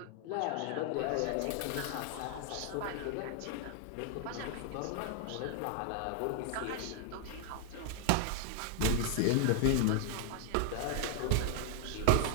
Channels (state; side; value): different; both; correlation 0.00